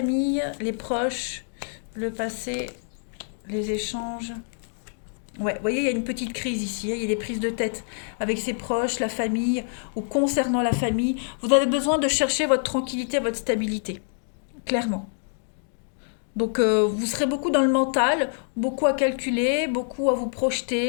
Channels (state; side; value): silent; right; digital silence